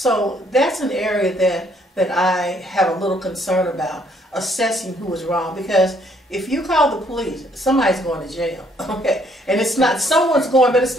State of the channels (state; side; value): normal; both; correlation 0.66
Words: that's an area that I have a little concern about, assessing who was wrong, because if you call the police, somebody's going to jail, okay? And it's not, someone's going, but it's